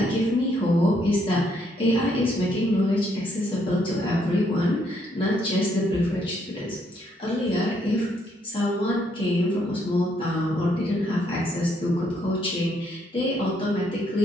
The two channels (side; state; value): both; normal; correlation 0.71